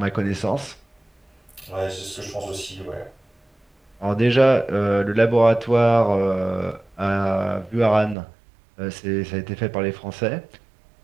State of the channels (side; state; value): left; drops out; at 8.2 s